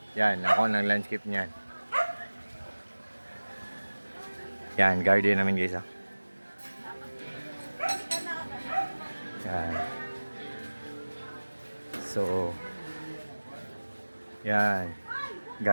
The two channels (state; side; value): inverted; both; correlation -1.00